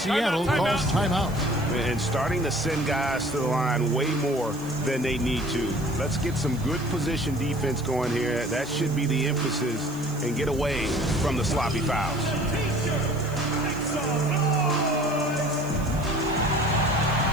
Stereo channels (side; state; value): right; noise; hiss, 20 dB below the sound